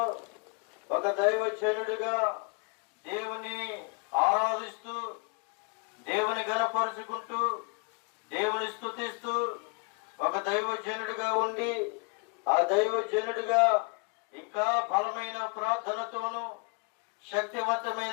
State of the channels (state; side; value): quieter; right; 34.6 dB